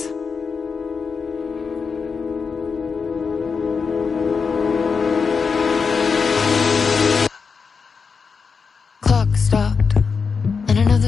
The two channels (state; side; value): quieter; right; 5.4 dB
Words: Clock stopped, and